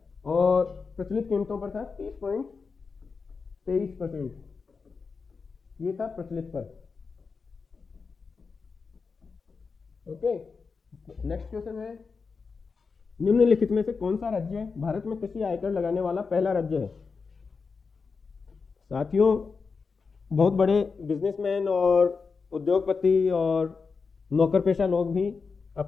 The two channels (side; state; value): right; quieter; 4.9 dB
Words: और प्रचलित कीमतों पर था 30.23%। ये था प्रचलित पर। ओके, नेक्स्ट क्वेश्चन है, निम्नलिखित में से कौन सा राज्य भारत में कृषि आयकर लगाने वाला पहला राज्य है? साथियों, बहुत बड़े बिजनेसमैन और उद्योगपति और नौकर पेशा लोग भी